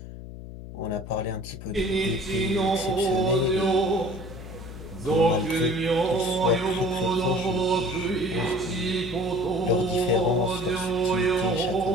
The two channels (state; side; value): noise; left; hum, 12 dB below the sound